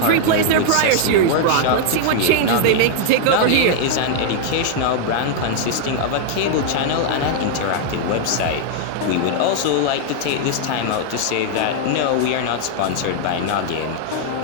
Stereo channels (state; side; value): different; both; correlation -0.01